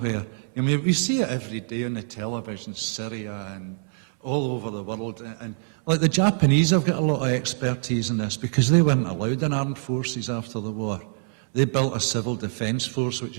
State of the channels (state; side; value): silent; left; 62 dB below the other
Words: I mean, we see it every day on the television, Syria and all over the world. And like the Japanese have got a lot of expertise in this because they weren't allowed in armed forces after the war. They built a civil defence force, which